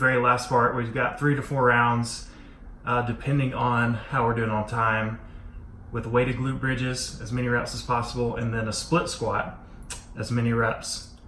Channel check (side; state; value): both; identical; correlation 1.00